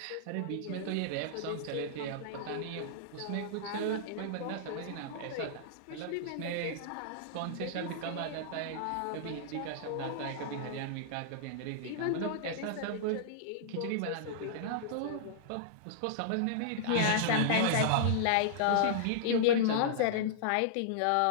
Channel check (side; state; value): both; different; correlation -0.02